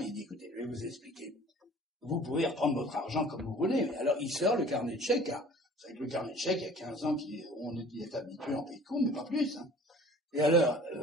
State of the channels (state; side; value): normal; both; correlation 0.48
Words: il dit, écoutez, je vais vous expliquer. Vous pouvez reprendre votre argent comme vous voulez. Alors il sort le carnet de chèques. Hein. Vous savez que le carnet de chèques, il y a 15 ans on est habitué en pays de compte, mais pas plus. Hein. Et alors,